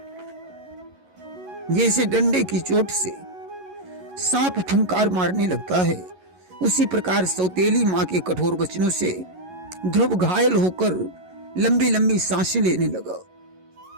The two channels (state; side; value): late; left; 11 ms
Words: जैसे डंडे की चोट से सांप फुंकार मारने लगता है, उसी प्रकार सौतेली मां के कठोर वचनों से ध्रुव घायल होकर लंबी लंबी सांसें लेने लगा।